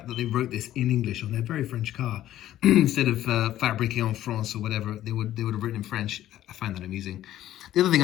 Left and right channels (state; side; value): quieter; right; 13.1 dB